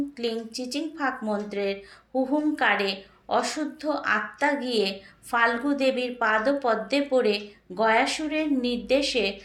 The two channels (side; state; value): both; identical; correlation 1.00